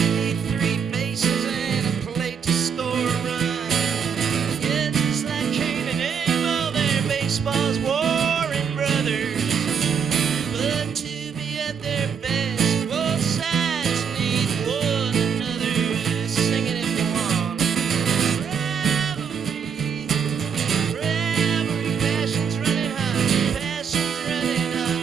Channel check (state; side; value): quieter; left; 6.7 dB